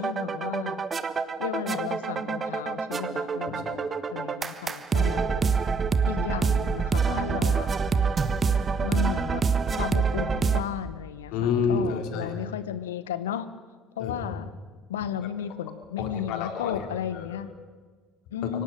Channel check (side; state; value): both; normal; correlation 0.58